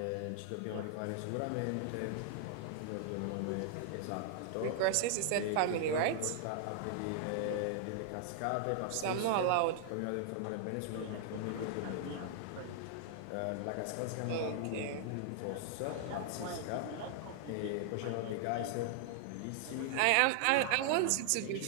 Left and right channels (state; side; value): different; both; correlation -0.01